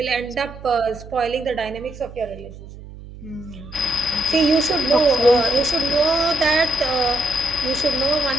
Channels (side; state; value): right; noise; hum, 16 dB below the sound